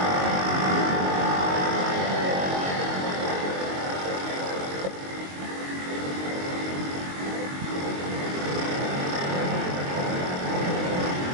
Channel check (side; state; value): left; late; 22 ms